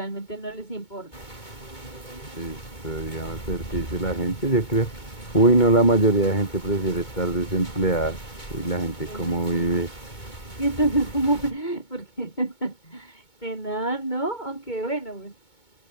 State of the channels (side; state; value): right; late; 2.2 ms